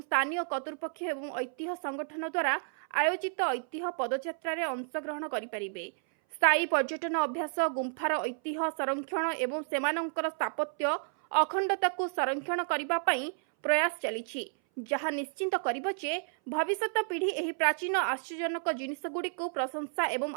स्थानीय कर्तृपक्ष एवं ऐतिह्य संगठन द्वारा आयोजित ऐतिह्य पदयात्रा रे अंशग्रहण करि परिबे। स्थायी पर्यटन अभ्यास, गुंफार ऐतिह्य संरक्षण एवं सेमानंकर स्थापत्य अखंडता को संरक्षण करिबा पई प्रयास चलिछि, जहा निश्चिंत करिबो जे भविष्यत पीढ़ी एही प्राचीन आश्चर्यजनक जिनिसगुड़ी को प्रशंसा एवं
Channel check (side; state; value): left; silent; 57 dB below the other